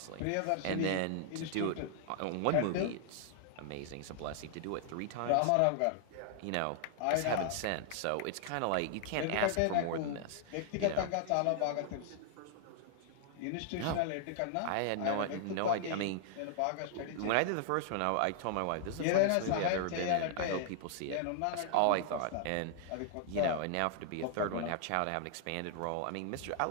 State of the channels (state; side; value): different; both; correlation 0.00